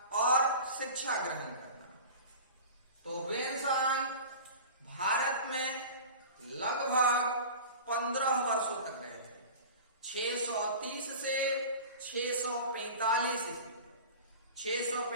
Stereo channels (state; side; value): inverted; both; correlation -0.36